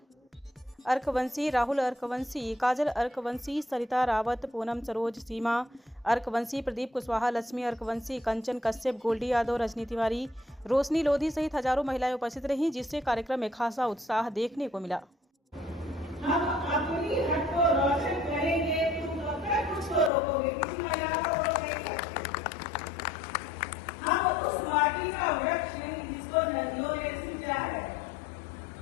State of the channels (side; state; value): right; drops out; at 20.1 s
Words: अर्कवंशी, राहुल अर्कवंशी, काजल अर्कवंशी, सरिता रावत, पूनम सरोज, सीमा अर्कवंशी, प्रदीप कुशवाहा, लक्ष्मी अर्कवंशी, कंचन कश्यप, गोल्डी यादव, रजनी तिवारी, रोशनी लोधी सहित हजारों महिलाएं उपस्थित रहीं, जिससे कार्यक्रम में खासा उत्साह देखने को मिला। हम अपनी हक को रोशन करेंगे, तुम कब कुछ को रोकोगे, किसी का याद रोकोगे। हम उस माटी का वृक्ष नहीं जिसको नदियों ने सींचा है।